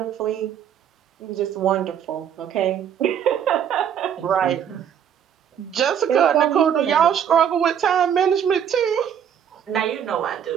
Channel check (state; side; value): quieter; left; 8.8 dB